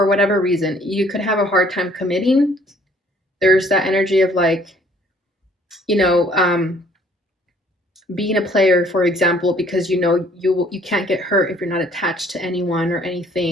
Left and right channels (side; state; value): both; normal; correlation 0.59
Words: whatever reason, you could have a hard time committing. There's that energy of like, you know, being a player, for example, because you know you can't get hurt if you're not attached to anyone or